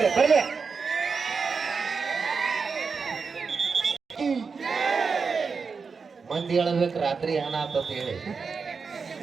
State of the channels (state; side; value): quieter; left; 5.2 dB